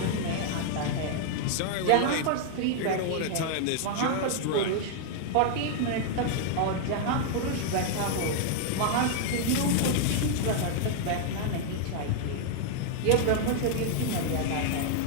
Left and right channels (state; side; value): different; both; correlation 0.00